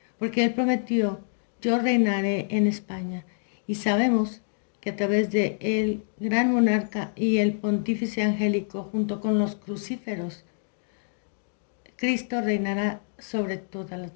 Porque Él prometió, yo reinaré en España. Y sabemos que a través de el gran monarca y el pontífice angélico, junto con los crucíferos, Cristo reinará sobre todas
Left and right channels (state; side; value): silent; right; digital silence